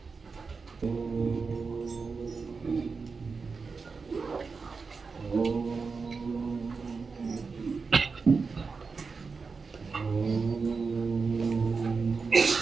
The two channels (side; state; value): left; quieter; 4.8 dB